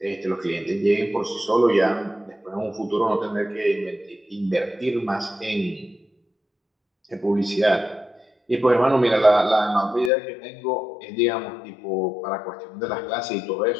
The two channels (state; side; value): drops out; right; at 10.1 s